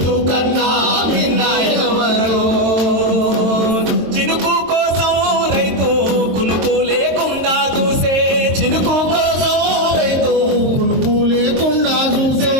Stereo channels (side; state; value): left; late; 23 ms